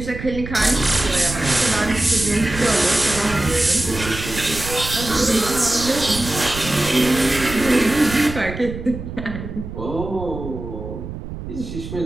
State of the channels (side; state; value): right; noise; rumble, 9 dB below the sound